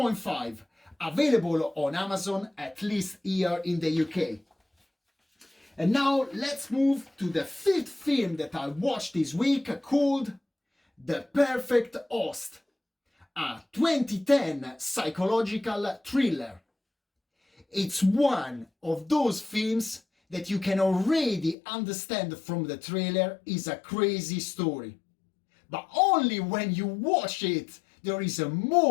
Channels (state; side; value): drops out; right; at 21.6 s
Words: available on Amazon, at least here in the UK. And now let's move to the fifth film that I watched this week, called The Perfect Host, a 2010 psychological thriller. It's one of those films that you can already understand from the trailer is a crazy story. But only when you watch it, there is a